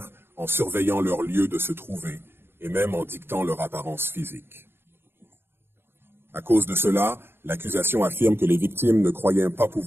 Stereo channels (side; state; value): left; late; 0.11 ms